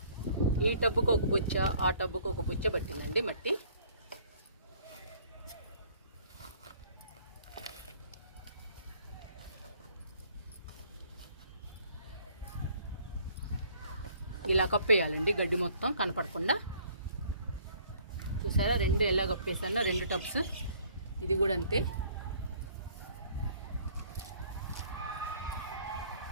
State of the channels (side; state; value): both; inverted; correlation -0.58